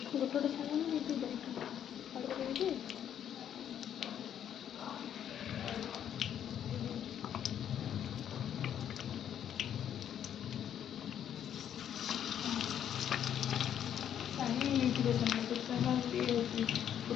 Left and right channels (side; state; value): right; quieter; 9.7 dB